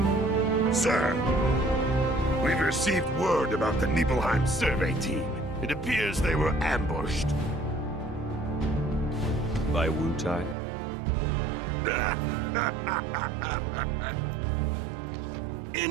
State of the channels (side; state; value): left; drops out; at 10.6 s